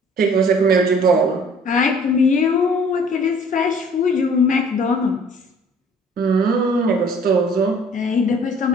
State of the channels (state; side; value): normal; both; correlation 0.54